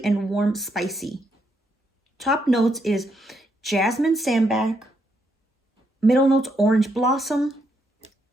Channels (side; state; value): both; normal; correlation 0.77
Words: and warm spicy. Top notes is jasmine sambac. Middle notes, orange blossom.